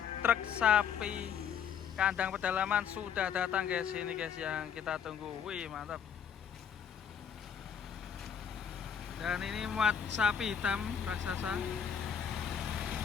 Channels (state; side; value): quieter; right; 7.9 dB